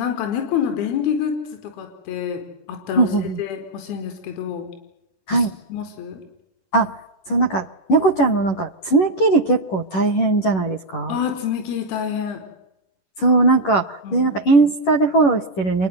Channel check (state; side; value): late; right; 11 ms